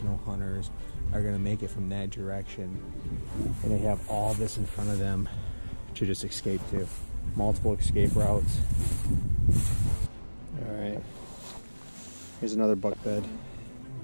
no hunters are going to make it from that direction. And they have all this in front of them to just escape to. Multiple escape routes. All right. Here's another buck bed.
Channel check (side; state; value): both; inverted; correlation -1.00